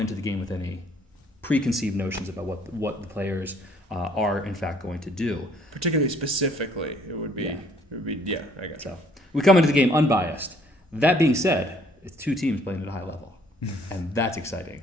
the game with any preconceived notions about what the players are in fact going to do. Particularly specifically, it would be I got you. So we come into the game unbiased. That being said, it's 2 teams playing at a high level, and that's exciting.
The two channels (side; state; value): both; normal; correlation 0.61